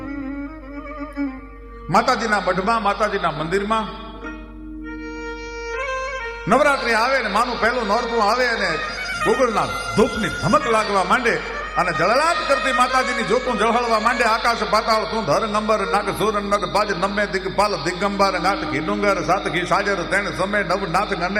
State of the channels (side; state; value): both; identical; correlation 1.00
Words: માતાજીના મઢમાં માતાજીના મંદિરમાં નવરાત્રિ આવે ને માનું પહેલું નોરતું આવે અને ગોગળના ધૂપની ધમક લાગવા માંડે અને જળલાટ કરતી માતાજીની જોતું જળહળવા માંડે. આકાશ પાતાળ તું ધર નંબર નાગ સુર નર બાજ નમે દિગપાલ દિગંબર નાથ ઘી ડુંગર સાત ઘી સાજર તેણ સમય નવ નાથ